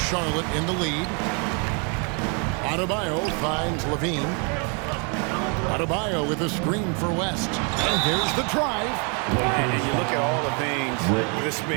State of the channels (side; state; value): left; quieter; 36.1 dB